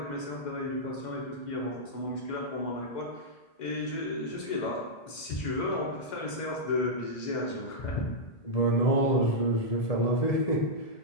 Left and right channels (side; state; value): right; late; 2.1 ms